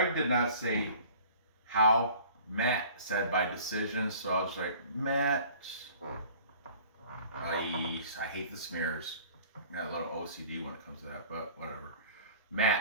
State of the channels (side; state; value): both; inverted; correlation -0.47